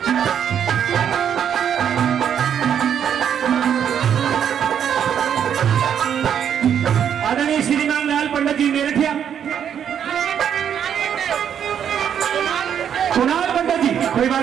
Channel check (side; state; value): left; quieter; 8.7 dB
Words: आदरणीय श्रीमान लाल पंडित जी मेरठिया, कुणाल पंडित जी, कोई